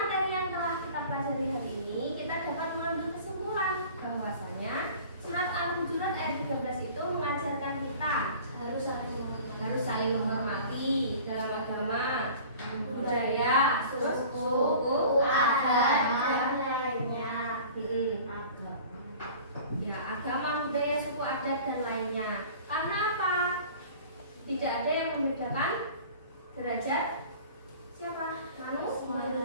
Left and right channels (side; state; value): both; inverted; correlation -0.44